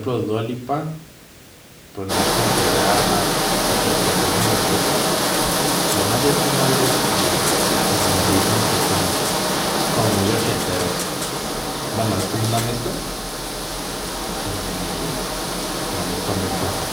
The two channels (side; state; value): both; identical; correlation 1.00